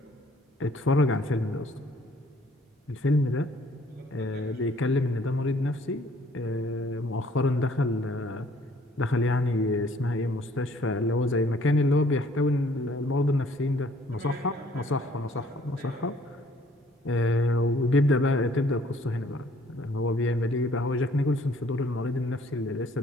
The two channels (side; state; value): both; normal; correlation 0.60